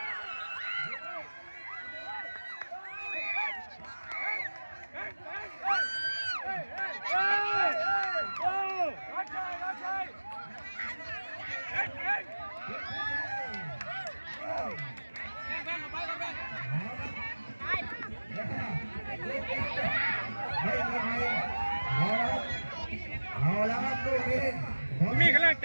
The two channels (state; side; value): inverted; both; correlation -1.00